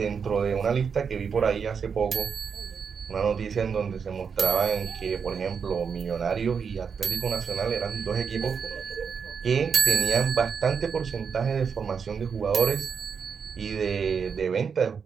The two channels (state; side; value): quieter; left; 6.3 dB